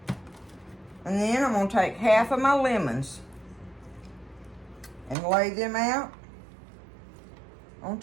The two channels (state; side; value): drops out; left; at 5.2 s